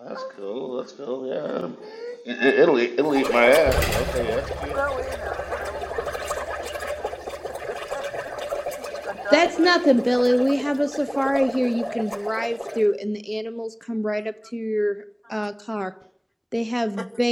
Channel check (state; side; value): identical; both; correlation 1.00